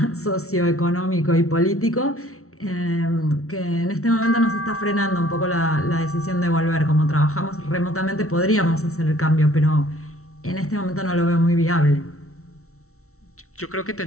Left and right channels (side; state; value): right; late; 0.63 ms